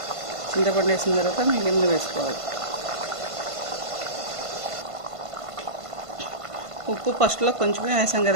చింతపండు వేసిన తర్వాత మిగిలిన వేసుకోవాలి. ఉప్పు ఫస్ట్లో కొంచెమే వేసాం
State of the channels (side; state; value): left; late; 1.5 ms